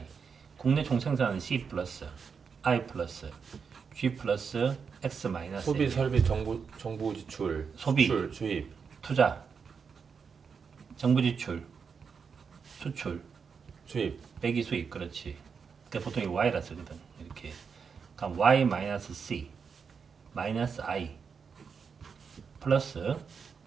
국내 총생산은 C 플러스 I 플러스 G 플러스 X 마이너스 소비, 설비, 정부 지출, 소비. 수출, 주입. 투자, 정부 지출, 수출, 주입. 빼기 수입. 그렇지. 그러니까 보통 이 Y라 쓰거든. 이렇게. 그럼 Y 마이너스 C 마이너스 I 플러스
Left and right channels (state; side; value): quieter; left; 6.0 dB